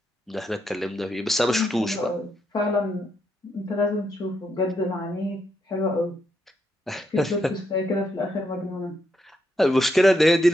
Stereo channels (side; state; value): both; normal; correlation 0.79